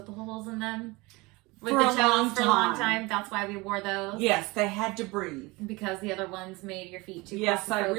the holes in them? With For the a toes long for a long time. time. That's why we wore those. Yes, they had to breathe. Because the other ones made your feet too Yes, I claustrophobic.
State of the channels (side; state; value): left; quieter; 23.8 dB